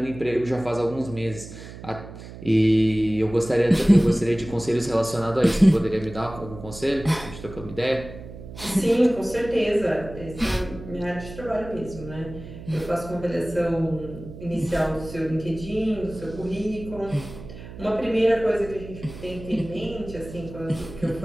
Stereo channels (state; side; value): noise; right; hum, 14 dB below the sound